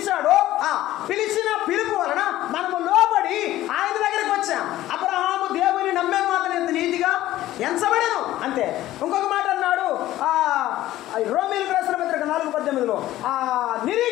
పిలిచిన పిలుపు వలన మనము లోబడి ఆయన దగ్గరికి వచ్చాం. అబ్రహాము దేవుని నమ్మే మాత్రం ఎంత నీతిగా ఎంచబడను అంతే. ఇంకొక మాట అన్నాడు రోమీయులకు రాసిన పత్రిక 4:18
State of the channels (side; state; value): right; quieter; 14.8 dB